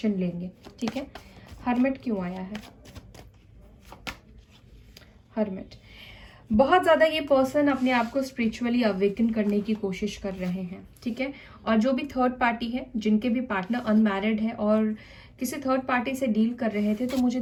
लेंगे, ठीक है। हर्मिट क्यों आया है? हर्मिट, बहुत ज़्यादा ये पर्सन अपने आप को स्पिरिचुअली अवेकन करने की कोशिश कर रहे हैं, ठीक है। और जो भी थर्ड पार्टी है, जिनके भी पार्टनर अनमैरिड है और किसी थर्ड पार्टी से डील कर रहे थे, तो मुझे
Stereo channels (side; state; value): both; identical; correlation 1.00